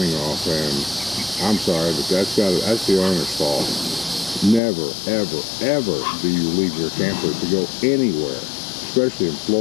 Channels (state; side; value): drops out; right; at 4.6 s